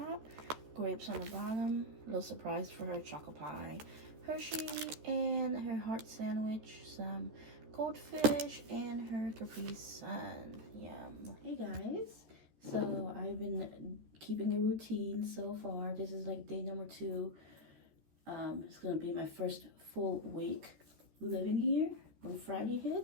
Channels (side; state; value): left; late; 13 ms